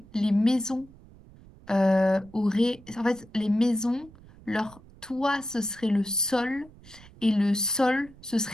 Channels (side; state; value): right; noise; rumble, 23 dB below the sound